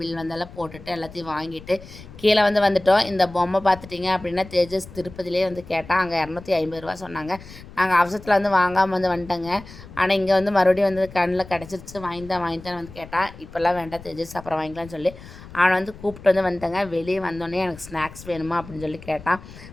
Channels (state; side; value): noise; left; rumble, 17 dB below the sound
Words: வந்தெல்லாம் போட்டுட்டு எல்லாத்தையும் வாங்கிட்டு கீழே வந்துட்டோம். இந்த பொம்மை பார்த்துட்டிங்க அப்படின்னா தேஜஸ் திருப்பதிலே வந்து கேட்டால் அங்கே 250 ரூபா சொன்னாங்க. நாங்கள் அவசரத்தில் வந்து வாங்காமல் வந்துட்டோங்க. ஆனால் இங்கே வந்து மறுபடியும் வந்து கண்ணில் கிடச்சிருச்சு. வாங்கித்தான் வந்து கேட்டான். இப்போல்லாம் வேண்டாம் தேஜஸ், அப்புறம் வாங்கிக்கலாம்னு சொல்லி அவனை வந்து கூப்பிட்டு வந்துட்டேங்க. வெளியே வந்தோடனே எனக்கு ஸ்நாக்ஸ் வேணுமா அப்படின்னு சொல்லி கேட்டான்.